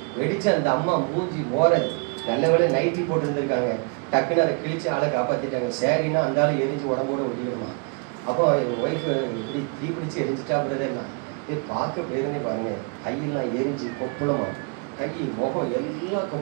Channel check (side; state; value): left; quieter; 36.0 dB